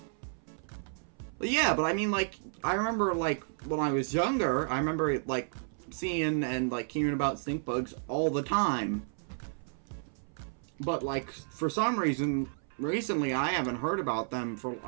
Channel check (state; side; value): silent; left; 56 dB below the other